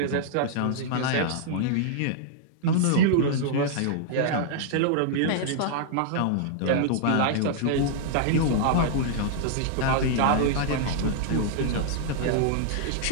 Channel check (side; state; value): both; different; correlation -0.01